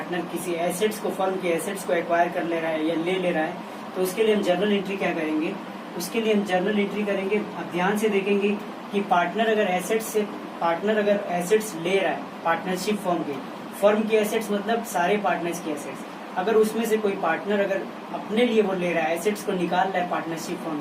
किसी एसेट्स को, फर्म के एसेट्स को एक्वायर कर ले रहा है या ले रहा है, तो उसके लिए हम जर्नल एंट्री क्या करेंगे, उसके लिए हम जर्नल एंट्री करेंगे. अब ध्यान से देखेंगे कि पार्टनर अगर एसेट्स ले रहा है पार्टनरशिप फर्म की एसेट्स, मतलब सारे पार्टनर्स की एसेट्स, अगर उसमें से कोई पार्टनर अगर अपने लिए वो ले रहा है, एसेट्स को निकाल रहा है पार्टनरशिप फर्म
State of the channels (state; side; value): identical; both; correlation 1.00